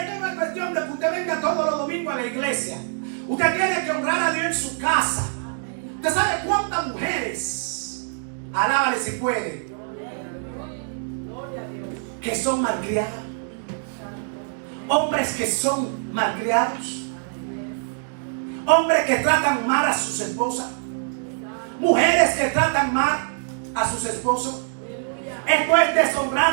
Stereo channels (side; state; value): left; silent; digital silence